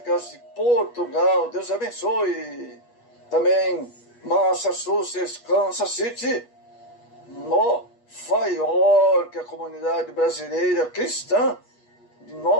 de Portugal. Deus abençoe. Também Massachusetts, Kansas City, Nova York, a comunidade brasileira cristã de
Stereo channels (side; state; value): right; late; 8.3 ms